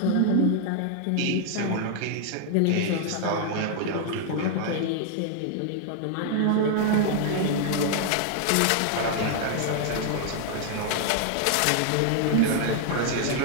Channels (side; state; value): both; different; correlation 0.00